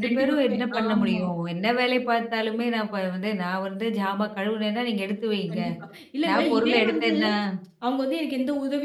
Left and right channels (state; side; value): identical; both; correlation 1.00